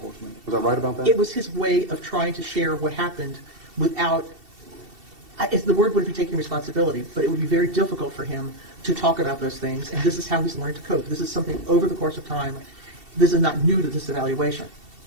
Was I right about that? It was his way of trying to share what happened without, the word wouldn't be taking responsibility, but it would be very difficult for him to talk about those things, and this is how he's learned to cope. This is something over the course of time. This is not new to this evaluation.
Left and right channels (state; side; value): late; left; 2.7 ms